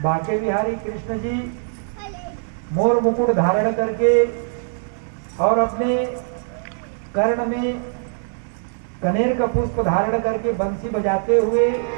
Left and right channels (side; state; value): left; silent; digital silence